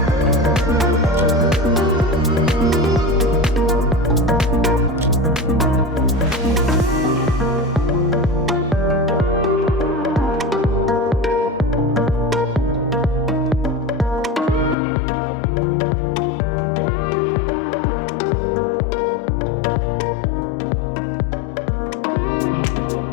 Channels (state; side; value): drops out; right; at 14.8 s